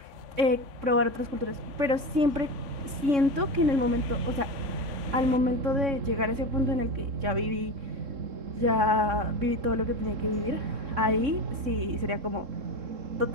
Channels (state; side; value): late; left; 3.6 ms